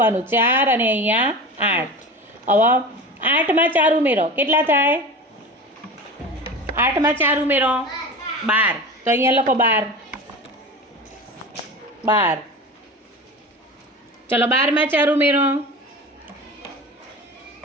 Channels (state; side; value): normal; both; correlation 0.32